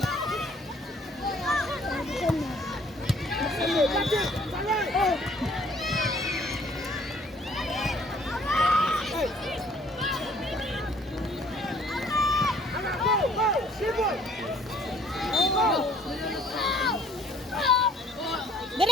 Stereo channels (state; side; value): normal; both; correlation 0.58